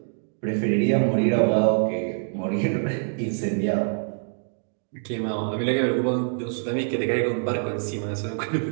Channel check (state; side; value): silent; left; digital silence